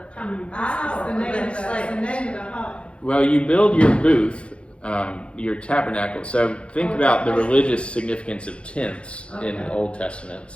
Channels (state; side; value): late; right; 0.059 ms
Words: coming by It's or the for name of the, it's the themselves? name of the hut. Well, you build your booth, your tabernacle. So think about the religious significance of tents in the Okay. Old Testament.